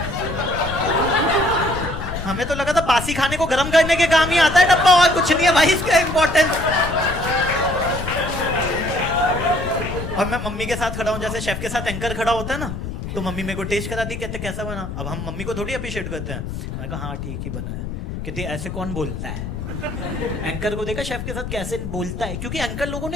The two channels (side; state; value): left; noise; rumble, 6 dB below the sound